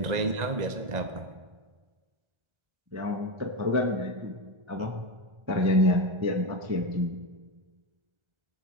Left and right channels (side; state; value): left; late; 1.4 ms